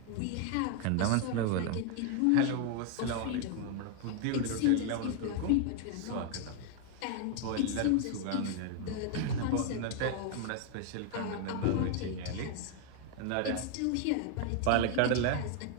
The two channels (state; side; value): different; both; correlation 0.00